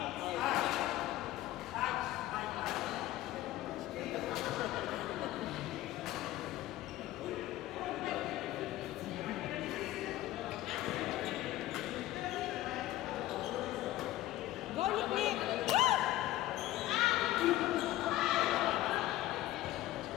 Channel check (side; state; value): right; quieter; 15.5 dB